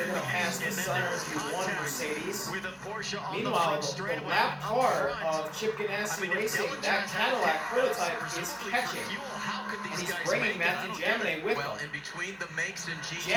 going to pass the Sunners one Mercedes. Meanwhile, the lap car of Chip Ganassi Racing, that Cadillac prototype is catching. And he's bringing Matthew Jaminet with him. In between the makes and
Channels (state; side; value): identical; both; correlation 1.00